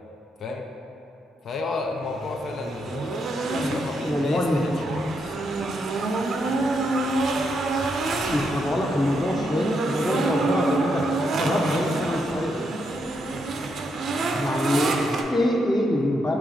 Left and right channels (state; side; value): normal; both; correlation 0.80